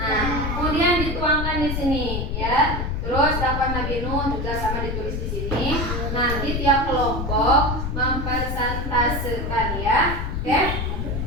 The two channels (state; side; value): noise; left; rumble, 2 dB below the sound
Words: kemudian dituangkan di sini ya. Terus dakwah Nabi Nuh juga sama ditulis di sini. Nanti tiap kelompok mempresentasekan ya. Oke?